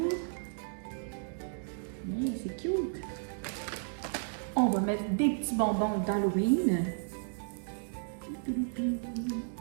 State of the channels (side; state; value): left; silent; digital silence